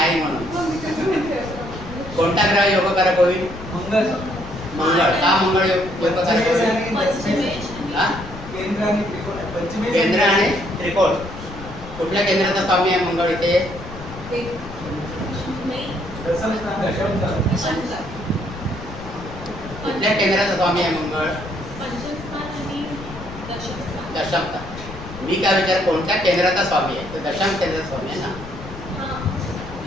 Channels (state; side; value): noise; left; rumble, 13 dB below the sound